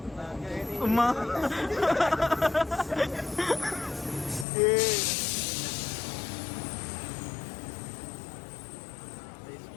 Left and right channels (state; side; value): drops out; right; at 4.5 s